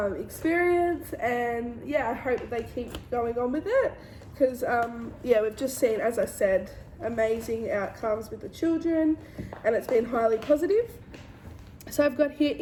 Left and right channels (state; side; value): identical; both; correlation 1.00